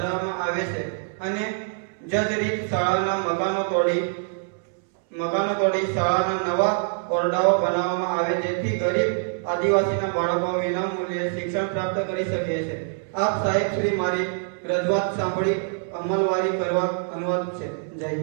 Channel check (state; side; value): silent; left; 62 dB below the other